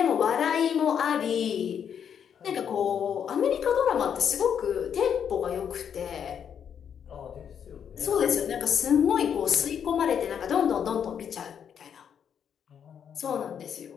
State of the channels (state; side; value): quieter; right; 8.1 dB